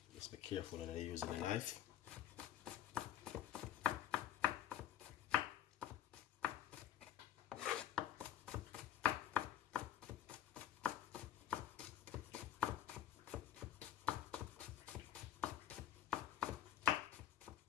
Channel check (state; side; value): quieter; right; 10.4 dB